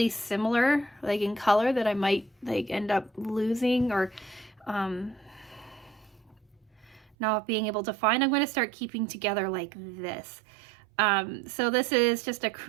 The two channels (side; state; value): left; drops out; at 7.2 s